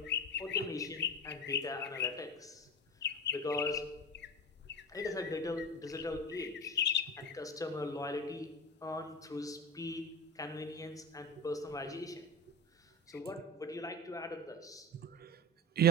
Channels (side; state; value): both; normal; correlation 0.26